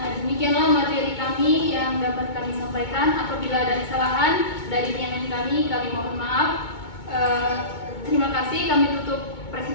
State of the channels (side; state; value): right; late; 2.2 ms